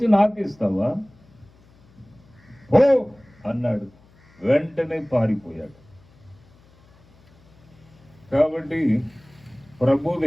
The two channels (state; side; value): noise; left; hum, 29 dB below the sound